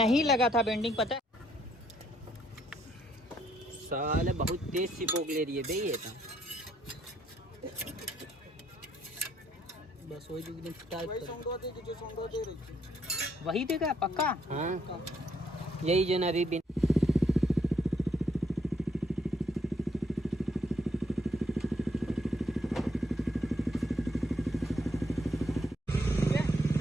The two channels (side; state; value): both; normal; correlation 0.70